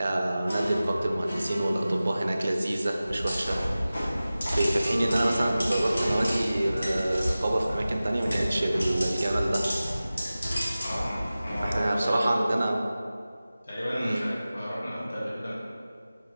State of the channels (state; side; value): inverted; both; correlation -0.96